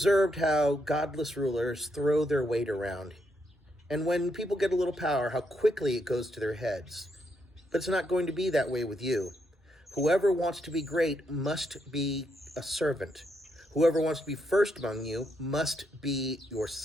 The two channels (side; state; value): both; normal; correlation 0.78